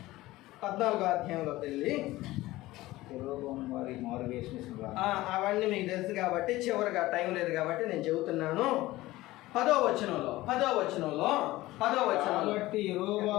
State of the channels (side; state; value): right; quieter; 17.8 dB